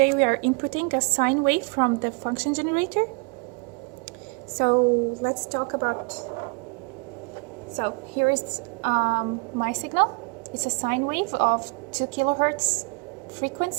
we are inputting a sine wave from the function generator. So let's talk about, so here is my signal. It's a sine wave of 2 kilohertz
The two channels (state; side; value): quieter; left; 30.1 dB